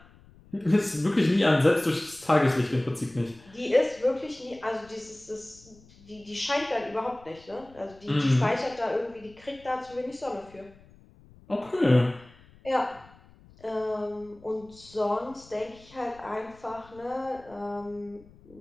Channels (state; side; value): noise; left; rumble, 25 dB below the sound